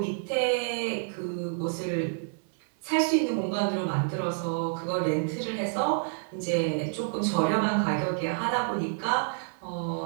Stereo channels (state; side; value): silent; left; digital silence